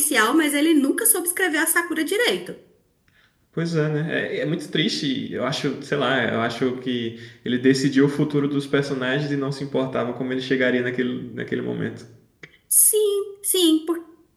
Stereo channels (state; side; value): identical; both; correlation 1.00